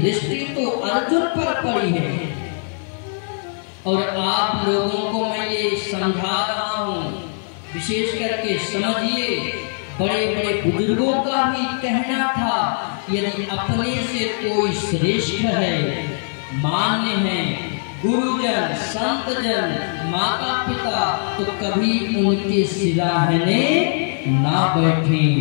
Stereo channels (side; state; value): right; silent; digital silence